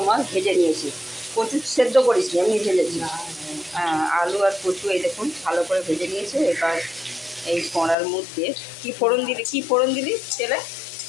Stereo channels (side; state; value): right; drops out; at 8.0 s